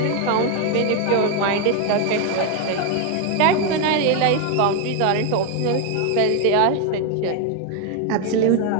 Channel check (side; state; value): both; different; correlation 0.01